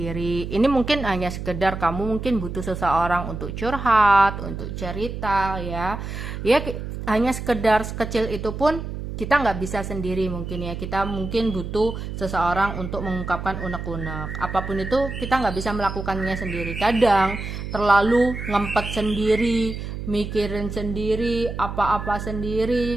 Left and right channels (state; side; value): noise; right; hum, 7 dB below the sound